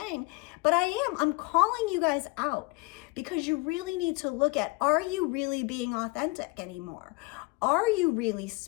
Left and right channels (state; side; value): quieter; right; 26.4 dB